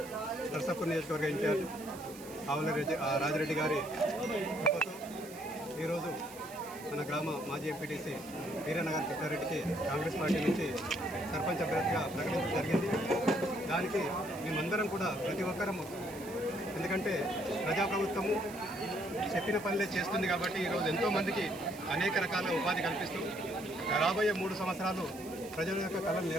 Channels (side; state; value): right; noise; hiss, 17 dB below the sound